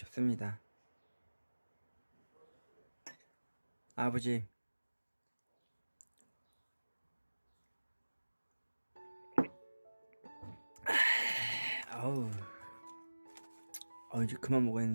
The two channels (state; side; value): inverted; both; correlation -1.00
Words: 아버지, 아우, 이제 그만